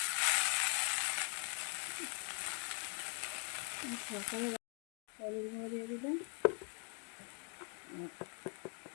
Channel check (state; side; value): quieter; right; 39.1 dB